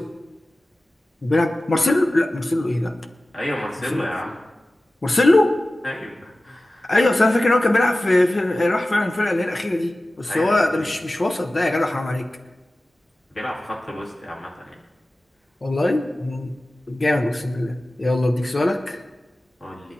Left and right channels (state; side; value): normal; both; correlation 0.96